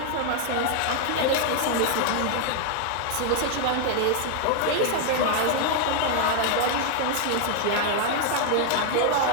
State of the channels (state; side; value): different; both; correlation 0.00